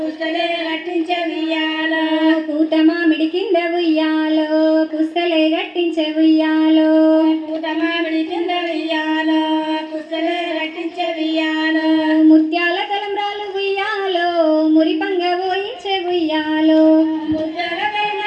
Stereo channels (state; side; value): identical; both; correlation 1.00